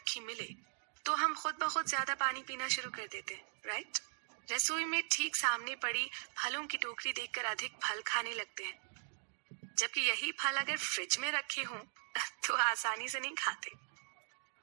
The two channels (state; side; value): silent; left; digital silence